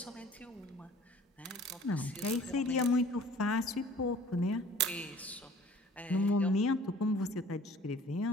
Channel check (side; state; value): both; normal; correlation 0.50